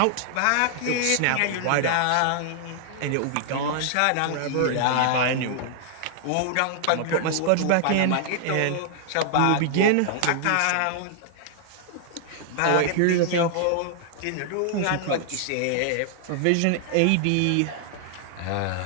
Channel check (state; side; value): different; both; correlation -0.01